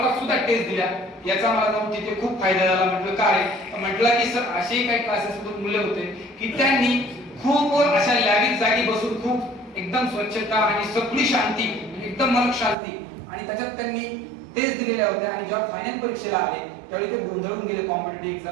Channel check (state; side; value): drops out; left; at 12.8 s